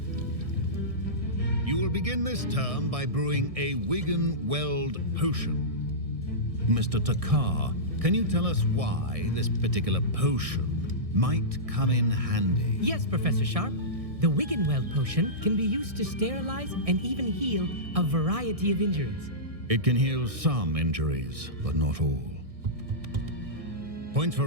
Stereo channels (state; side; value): late; left; 1.6 ms